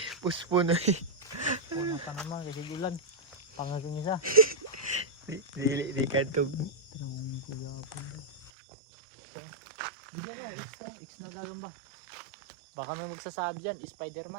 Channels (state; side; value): drops out; left; at 8.5 s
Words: Puspo na eh. Una pa naman kasi ulan. Pangaging isa. Di kantog. Bigyan mo, X na gagamba. Baka may magsasabi dyan,